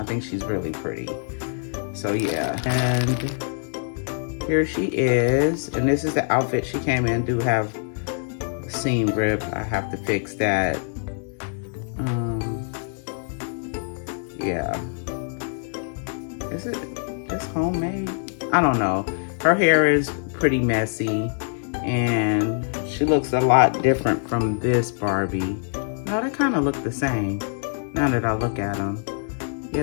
think she's really pretty. So yeah, and here she is, and this is the outfit she came in. Do have seam rip. I have to fix that. Yeah. Is it just homemade? I don't know. Her hair is pretty messy, and she looks a lot different from this Barbie. No, they kind of look the same now that I look at them. Yeah,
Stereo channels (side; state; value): right; silent; digital silence